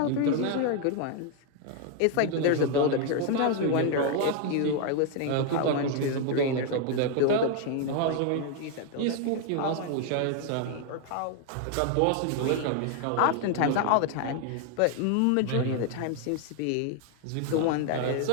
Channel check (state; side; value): different; both; correlation 0.00